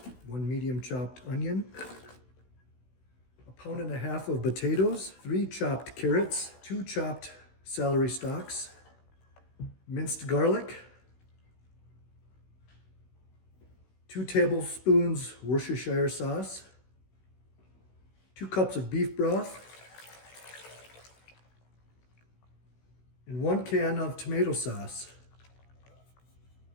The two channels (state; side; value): late; right; 16 ms